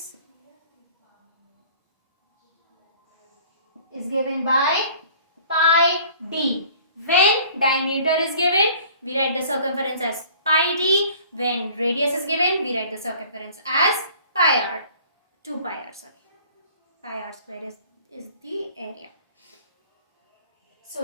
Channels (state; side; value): inverted; both; correlation -0.50